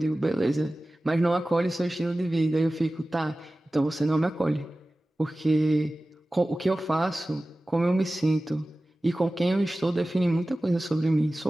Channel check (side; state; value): both; normal; correlation 0.96